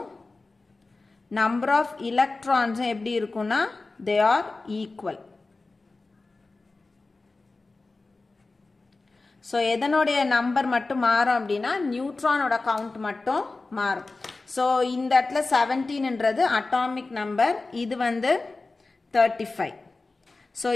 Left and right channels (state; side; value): quieter; right; 3.5 dB